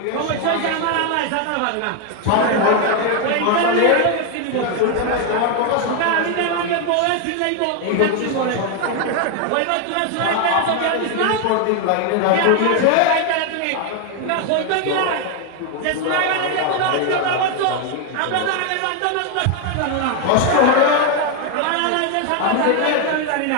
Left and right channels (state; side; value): different; both; correlation 0.01